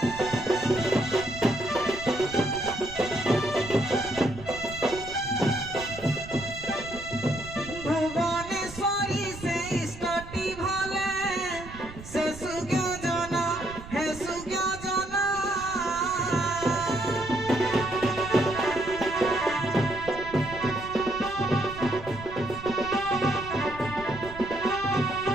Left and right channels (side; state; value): right; noise; rumble, 14 dB below the sound